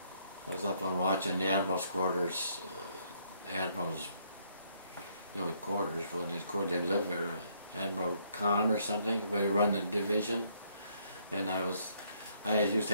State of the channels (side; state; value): both; inverted; correlation -0.69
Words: I was up on watching the admiral's quarters. Admiral's quarters when they lived there. Admiral Khan or something, where he run the division. And I used to